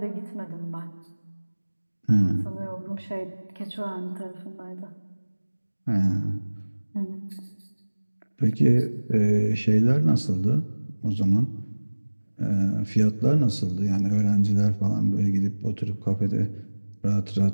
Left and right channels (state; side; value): inverted; both; correlation -1.00